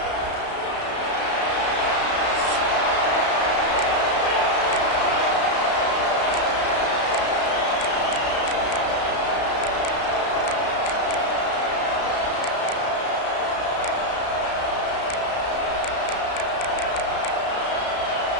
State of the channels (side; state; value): right; late; 33 ms